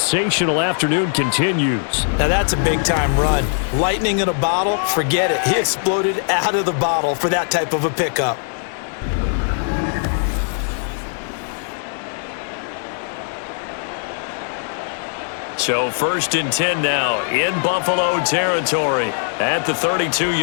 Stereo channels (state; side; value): silent; right; digital silence